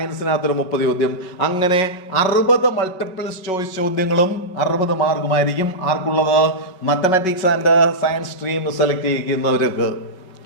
30 ചോദ്യം. അങ്ങനെ 60 മൾട്ടിപ്പിൾ ചോയ്സ് ചോദ്യങ്ങളും 60 മാർക്കുമായിരിക്കും ആർക്കുള്ളത്? Mathematics and science stream select ചെയ്യുന്നവർക്ക്.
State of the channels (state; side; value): late; right; 5.4 ms